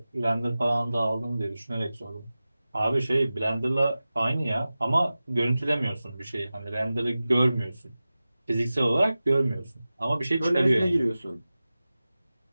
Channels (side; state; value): both; inverted; correlation -0.96